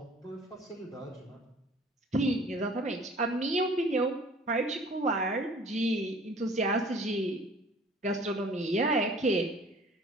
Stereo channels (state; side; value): normal; both; correlation 0.50